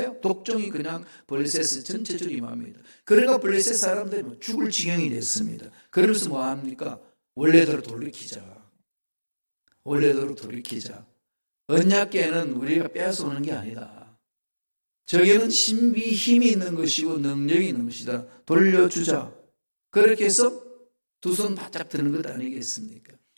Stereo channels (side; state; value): both; inverted; correlation -1.00